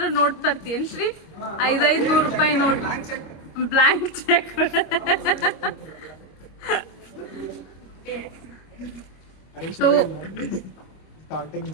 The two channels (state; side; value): late; right; 26 ms